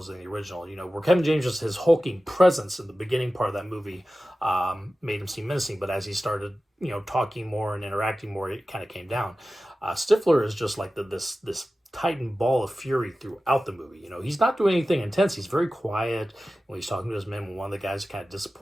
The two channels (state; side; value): normal; both; correlation 0.95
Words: in the original. You know, where Kevin James, just his hulking presence in the beginning part of that movie made him seem menacing, but as he started, you know, talking more and interacting more, it kind of came down. Stifler is just like this titan ball of fury throughout the movie. You know, he's not doing anything intense. He's very quiet when he's talking to his men. When one of the guys kind of